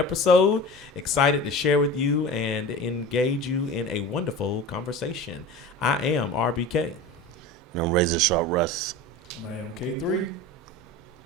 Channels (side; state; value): both; normal; correlation 0.33